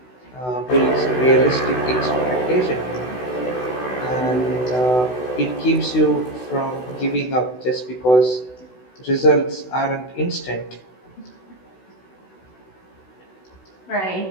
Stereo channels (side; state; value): right; late; 16 ms